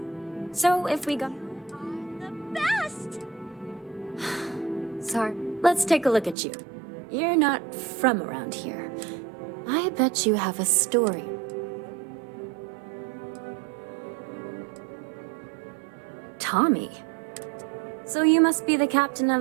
So if we go... The best! Sorry. Let's take a look at you. You're not from around here. I bet you have a story. Tommy. So you must be the captain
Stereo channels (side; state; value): left; drops out; at 6.4 s